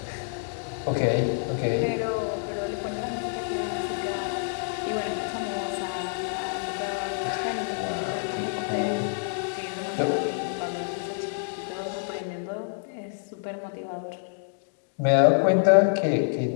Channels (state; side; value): silent; right; digital silence